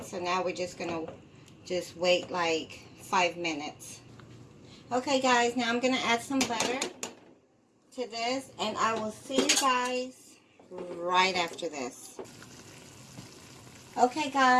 so now we're just going to wait like 5 minutes. Okay, guys, now I'm going to add some butter to this, and I will see you guys right after this. Okay,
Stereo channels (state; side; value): identical; both; correlation 1.00